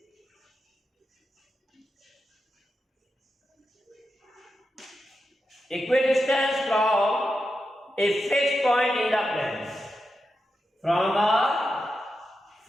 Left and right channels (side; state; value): both; normal; correlation 0.88